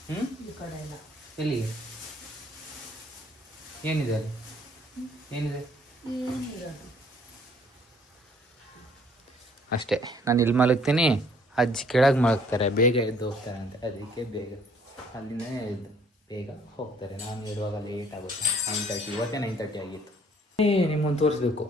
ಈ ಕಡೆ ಎಲ್ಲ. ಎಲ್ಲಿಗೆ? ಏನಿದೆ ಅಲ್ಲಿ? ಏನಿದೆ? ಏನಿರೋದು ಅಷ್ಟೇ. ನಾನು ಇಲ್ಲಿ ಮಲಗ್ತೀನಿ, ಅಜ್ಜಿ ಕೆಳಗೆ ಮಲಗ್ತಾರೆ, ಬೇಗ ಎದ್ದು ಹೋಗ್ತಾರೆ ಅಂತ. ಅದಕ್ಕೆ ಬೇಗ ಅಲ್ಲಿಂದ ಎದ್ದು ಬೇಗ ಹೋಗ್ತಾರೆ. ನಾನು ಇರುವಾಗ ಲೇಟ್ ಆಗುತ್ತೆ. 9:30, ಇವತ್ತೇ 9:30 ಆಗಿತ್ತು. ನಿಮ್ಮನ್ನು ತೋರಿಸ್ಬೇಕು.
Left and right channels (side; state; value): both; normal; correlation 0.60